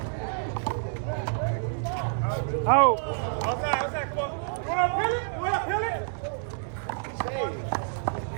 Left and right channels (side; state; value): left; silent; 59 dB below the other